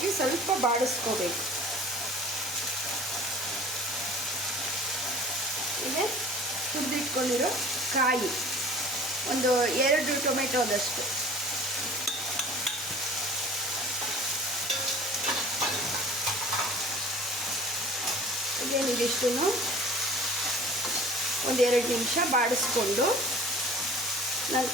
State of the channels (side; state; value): both; normal; correlation 0.45